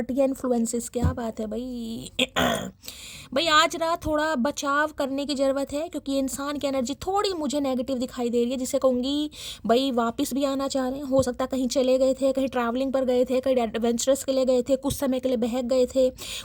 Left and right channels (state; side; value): identical; both; correlation 1.00